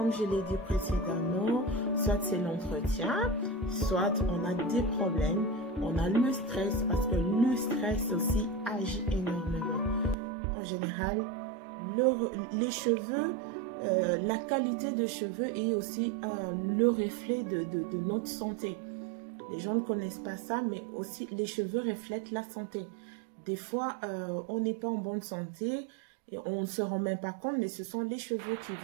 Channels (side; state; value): left; drops out; at 10.2 s